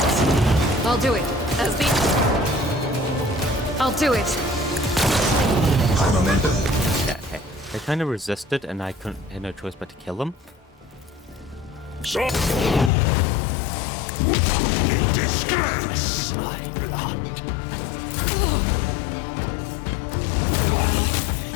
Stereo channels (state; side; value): drops out; right; at 12.9 s